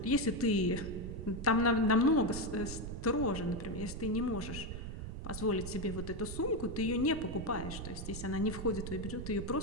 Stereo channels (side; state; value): right; noise; rumble, 7 dB below the sound